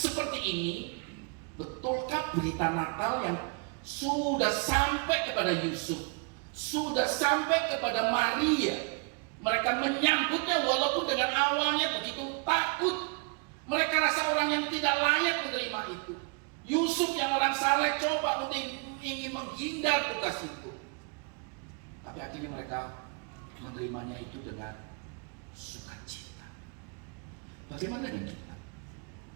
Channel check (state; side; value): quieter; left; 36.1 dB